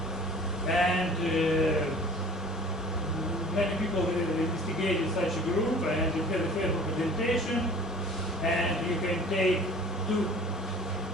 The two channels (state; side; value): normal; both; correlation 0.46